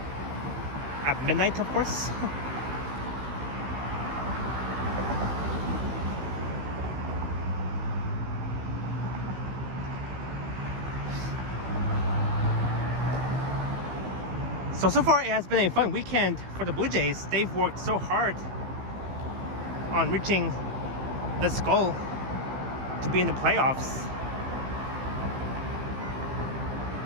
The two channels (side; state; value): left; late; 15 ms